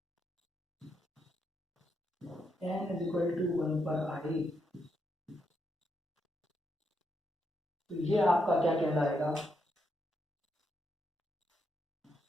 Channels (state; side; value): normal; both; correlation 0.81